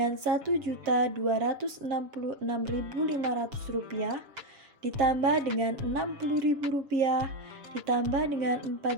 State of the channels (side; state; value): left; late; 7.1 ms